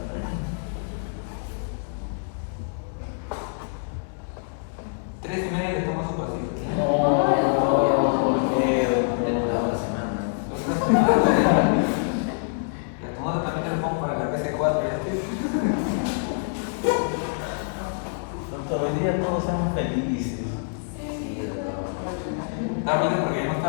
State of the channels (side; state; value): right; silent; digital silence